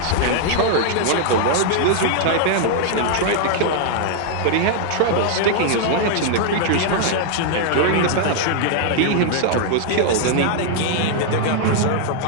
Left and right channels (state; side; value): different; both; correlation 0.00